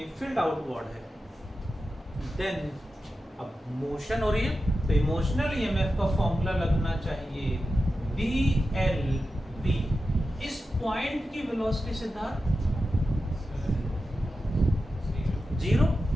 फील्ड आउटवर्ड है। देन अब मोशन हो रही है तो इमोशनल EMF का फॉर्मूला लगना चाहिए BLV। इस पॉइंट की वेलोसिटी सिद्धार्थ 0,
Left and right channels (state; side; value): normal; both; correlation 0.91